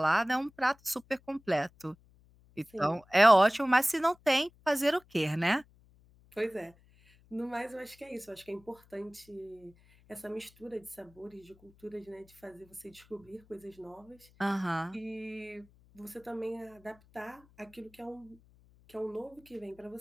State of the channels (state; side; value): noise; left; hum, 28 dB below the sound